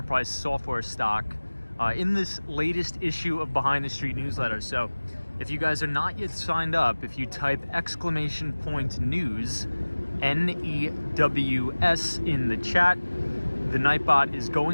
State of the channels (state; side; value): inverted; both; correlation -1.00